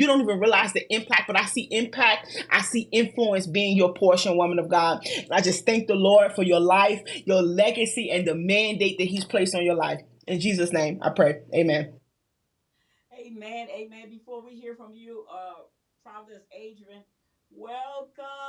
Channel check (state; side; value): identical; both; correlation 1.00